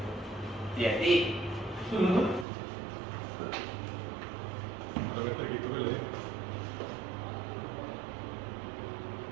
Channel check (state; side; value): drops out; left; at 2.5 s